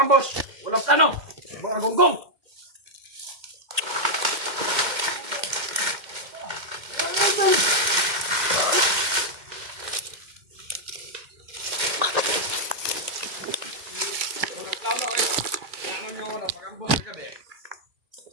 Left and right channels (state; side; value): late; left; 2.1 ms